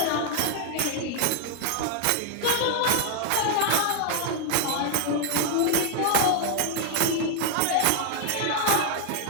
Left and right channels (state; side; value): different; both; correlation 0.00